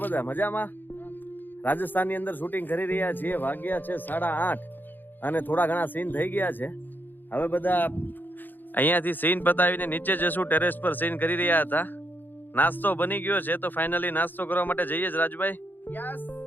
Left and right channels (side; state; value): right; late; 0.090 ms